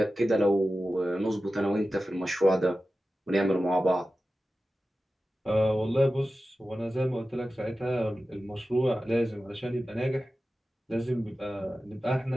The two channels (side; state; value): both; normal; correlation 0.94